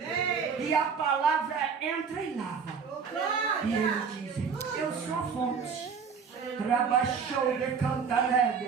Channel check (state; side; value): quieter; left; 6.1 dB